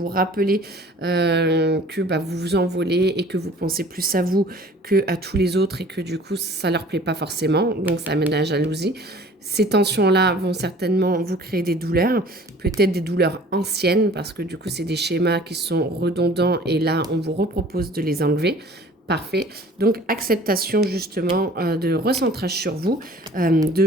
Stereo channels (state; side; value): normal; both; correlation 0.48